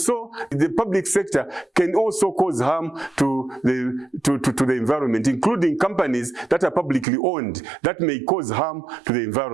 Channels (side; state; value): left; drops out; at 7.1 s